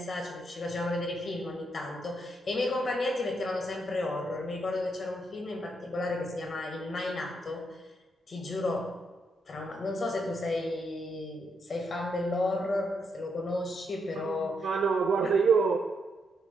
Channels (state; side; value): normal; both; correlation 0.78